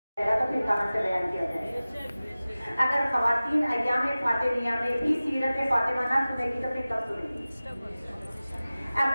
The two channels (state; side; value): inverted; both; correlation -0.97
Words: تو پھر کہاں سے بیان کیا جائے؟ اگر خواتین ایام فاطمیہ میں بھی سیرت فاطمہ نہ سنے گی تو پھر کب سنیں گی؟